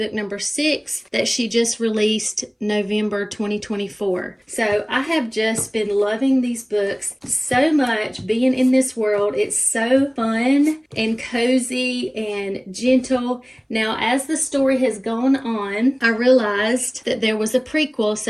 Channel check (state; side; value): identical; both; correlation 1.00